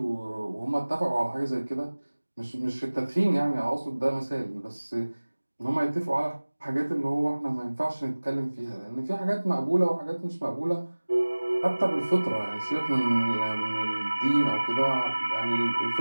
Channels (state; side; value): inverted; both; correlation -1.00